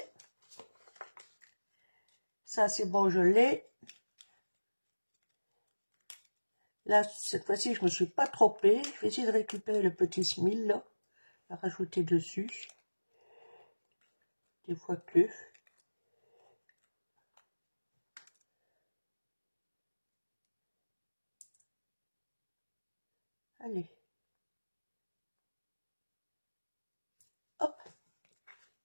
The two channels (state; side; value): inverted; both; correlation -1.00